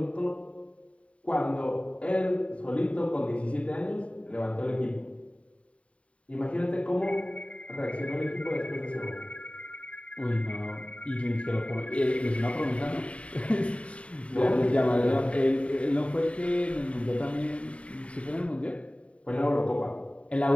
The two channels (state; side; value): late; right; 0.063 ms